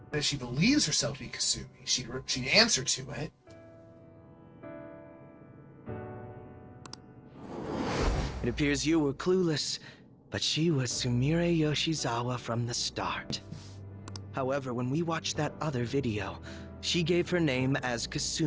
That she believes herself to be Kasumi. She'd answer to it. It appears you were clueless, but she was Sumire Yoshizawa from the start. However, when we watched that other video, she gave her name as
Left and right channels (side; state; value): both; identical; correlation 1.00